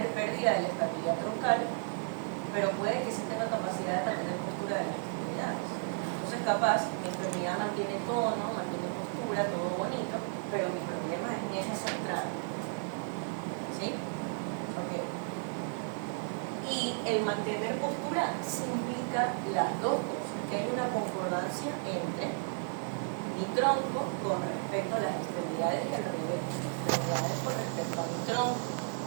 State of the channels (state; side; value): silent; left; 55 dB below the other